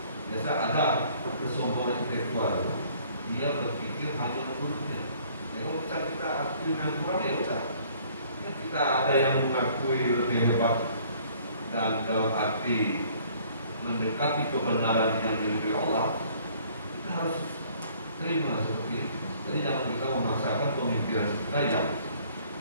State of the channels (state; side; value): inverted; both; correlation -0.58